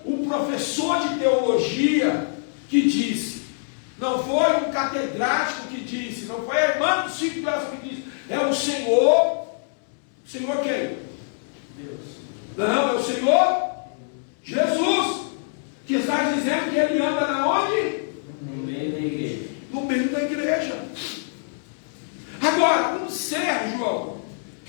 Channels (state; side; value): silent; right; 62 dB below the other